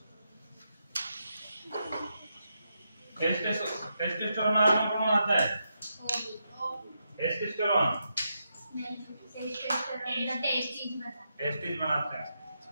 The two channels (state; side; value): inverted; both; correlation -0.84